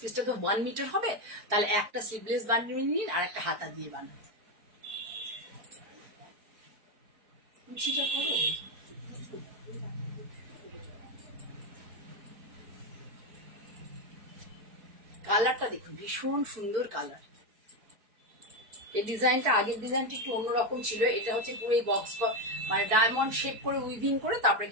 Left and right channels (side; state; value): left; late; 4.5 ms